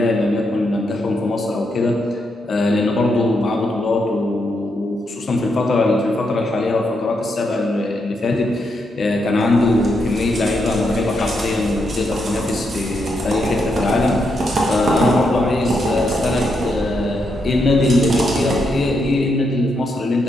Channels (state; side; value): normal; both; correlation 0.81